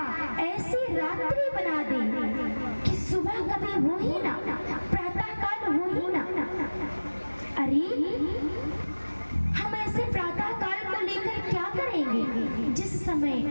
ऐसी रात्रि बना दे कि सुबह कभी हो ही ना, प्रातः काल हो ही ना। अरे हम ऐसे प्रातः काल को लेकर क्या करेंगे जिस समय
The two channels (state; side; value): inverted; both; correlation -1.00